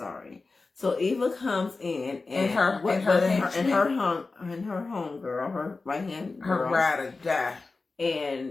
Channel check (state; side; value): quieter; right; 3.8 dB